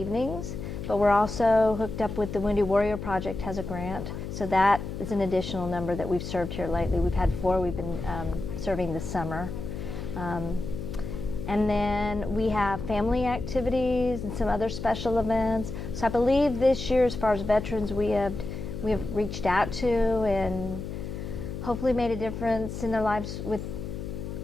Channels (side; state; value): left; noise; hum, 7 dB below the sound